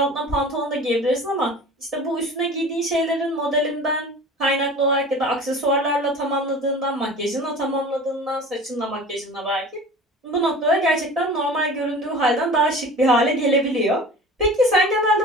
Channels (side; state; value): both; normal; correlation 0.39